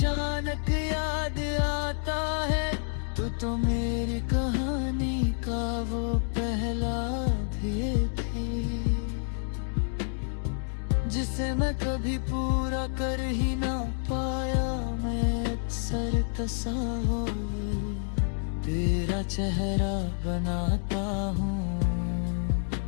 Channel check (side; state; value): right; silent; digital silence